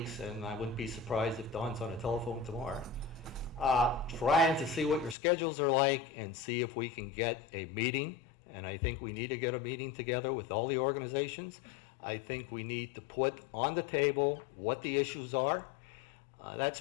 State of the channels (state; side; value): drops out; right; at 5.2 s